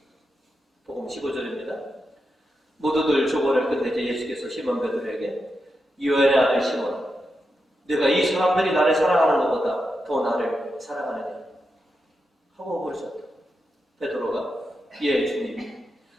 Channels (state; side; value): normal; both; correlation 0.87